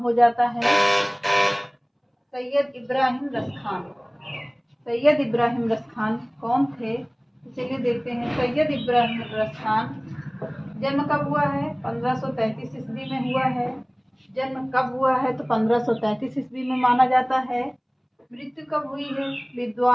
जाता है सैयद इब्राहिम रस खान। सैयद इब्राहिम रस खान कौन थे? तो चलिए देखते हैं। सैयद इब्राहिम रस खान जन्म कब हुआ है? 1533 ईस्वी में हुआ है। जन्म कब हुआ है? तो 1533 ईस्वी में माना जाता है। मृत्यु कब हुई है?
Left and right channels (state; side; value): identical; both; correlation 1.00